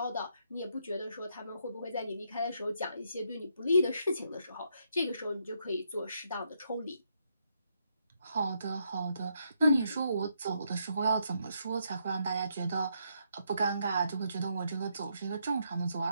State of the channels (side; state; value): both; inverted; correlation -0.77